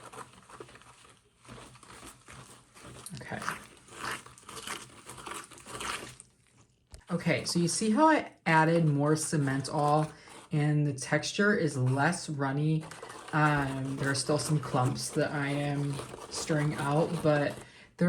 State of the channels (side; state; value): both; identical; correlation 1.00